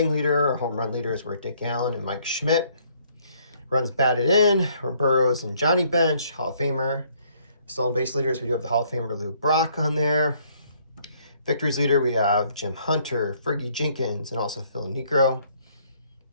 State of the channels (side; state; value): both; inverted; correlation -0.65